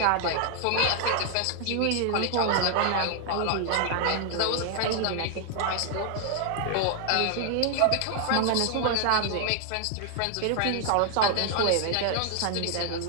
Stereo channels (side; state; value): both; different; correlation 0.00